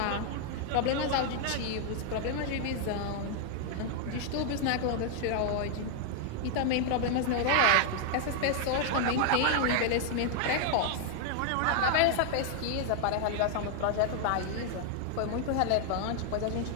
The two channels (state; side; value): different; both; correlation 0.00